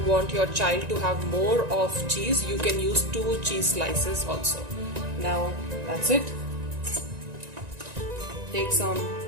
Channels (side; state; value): left; late; 1.9 ms